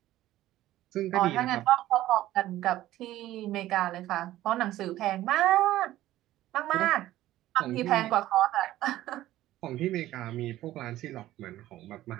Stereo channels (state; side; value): quieter; left; 14.7 dB